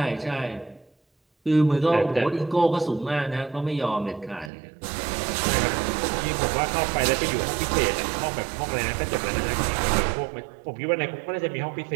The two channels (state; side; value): drops out; left; at 4.5 s